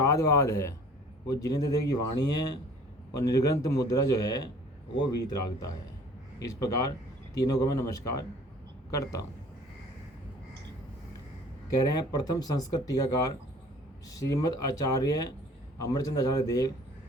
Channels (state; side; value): normal; both; correlation 0.50